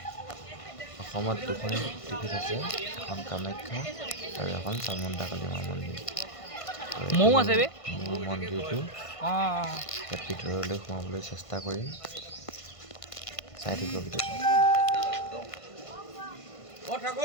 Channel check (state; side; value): late; right; 1.5 ms